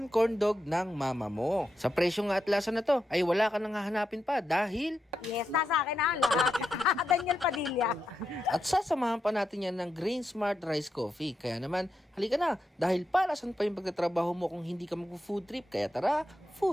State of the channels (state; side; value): normal; both; correlation 0.85